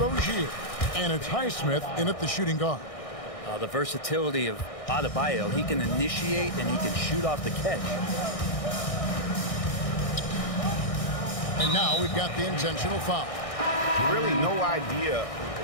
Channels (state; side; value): late; right; 1.6 ms